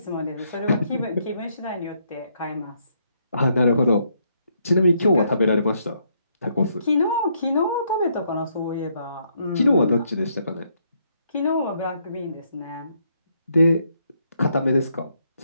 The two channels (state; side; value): inverted; both; correlation -0.74